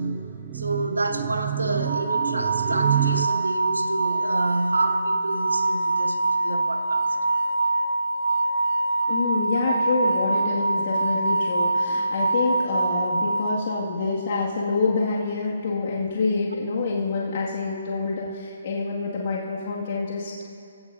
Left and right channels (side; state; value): both; inverted; correlation -0.81